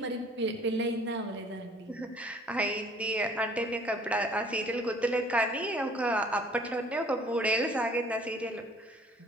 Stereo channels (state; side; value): normal; both; correlation 0.55